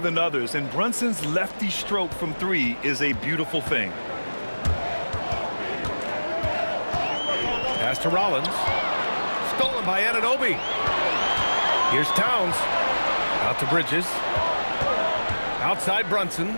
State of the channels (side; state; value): both; inverted; correlation -1.00